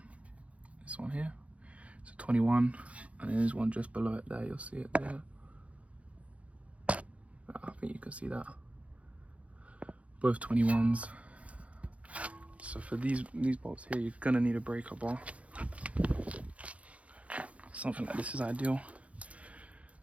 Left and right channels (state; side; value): late; left; 0.064 ms